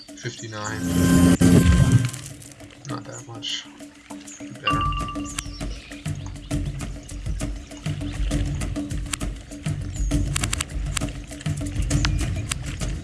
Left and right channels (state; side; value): identical; both; correlation 1.00